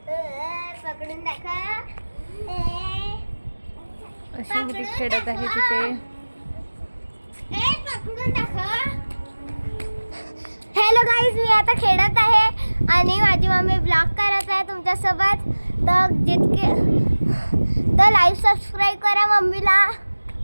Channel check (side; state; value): both; inverted; correlation -1.00